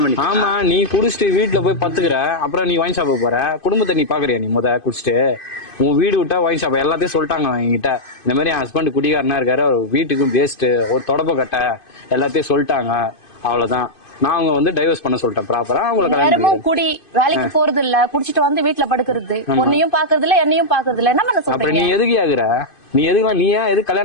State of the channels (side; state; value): right; late; 2.5 ms